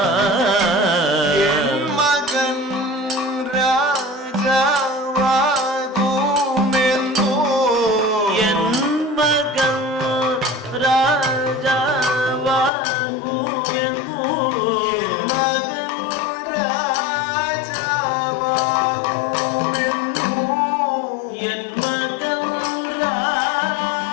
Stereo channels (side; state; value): right; drops out; at 12.7 s